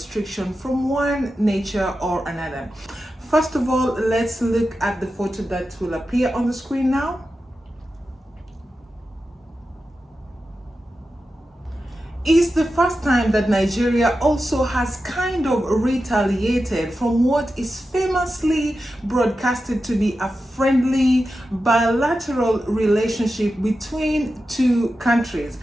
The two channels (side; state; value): both; normal; correlation 0.91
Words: from one nature or another. First of all, let's look at the photo that will appear on the screen now. It's the first time that Nigeria also has kind of retaliated from what is famously broadcasted to be a friendly bilateral relationship between two countries.